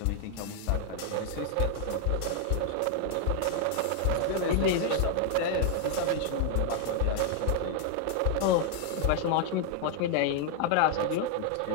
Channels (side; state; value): both; different; correlation 0.00